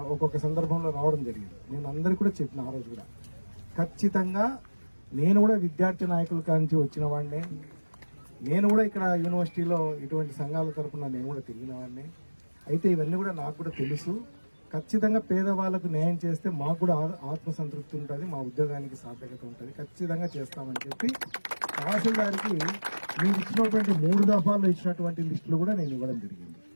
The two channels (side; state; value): both; inverted; correlation -1.00